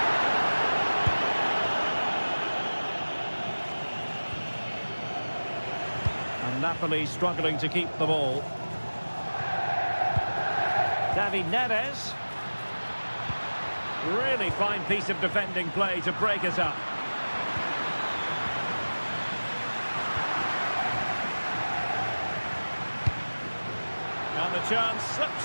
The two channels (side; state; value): both; inverted; correlation -1.00